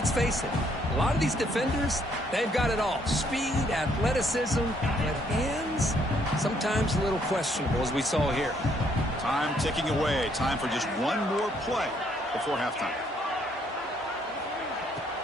face it, a lot of these defenders, they've got it all. Speed, athleticism, but hands, sometimes a little questionable, as we saw here. Time ticking away. Time for just one more play before halftime.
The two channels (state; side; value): normal; both; correlation 0.69